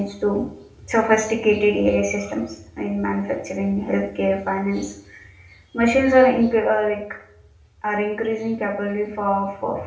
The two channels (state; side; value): identical; both; correlation 1.00